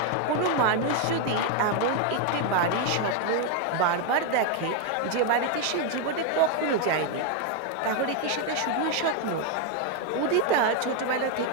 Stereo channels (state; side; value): different; both; correlation 0.01